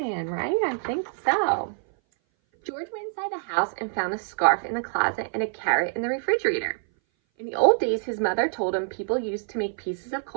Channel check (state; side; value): silent; left; 58 dB below the other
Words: right? I think so. George went inside the house and found a scarf in the closet and a carrot in the refrigerator. In the old days, his mother told him people used to make pieces of